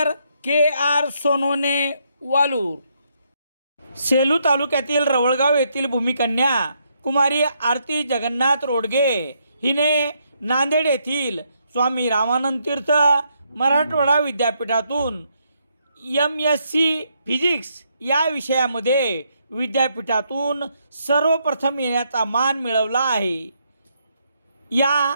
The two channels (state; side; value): inverted; both; correlation -0.76